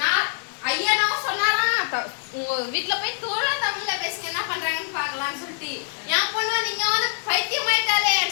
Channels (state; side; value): silent; right; digital silence